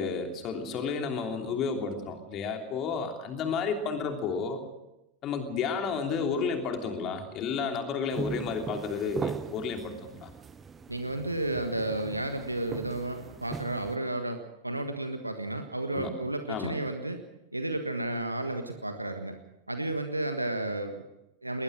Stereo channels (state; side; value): normal; both; correlation -0.14